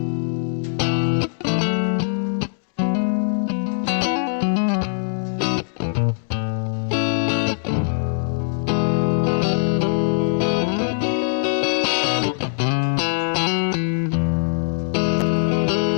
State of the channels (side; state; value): right; silent; digital silence